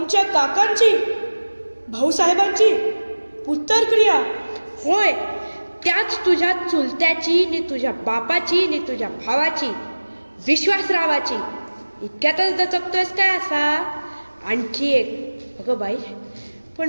काकांची, भाऊसाहेबांची उत्तरक्रिया? होय, त्याच तुझ्या चुलत्याची नि तुझ्या बापाची नि तुझ्या भावाची, विश्वासरावाची. इतक्यातच दचकतोयस काय असा? आणखी एक. अगं बाई, पण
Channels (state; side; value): inverted; both; correlation -1.00